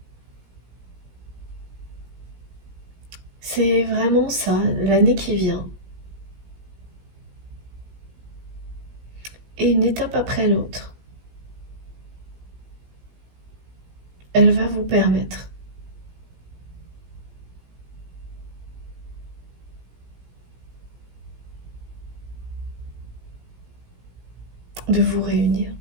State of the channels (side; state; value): left; late; 17 ms